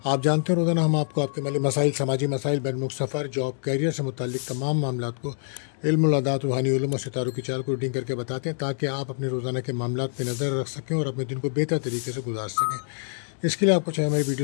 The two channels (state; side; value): silent; right; digital silence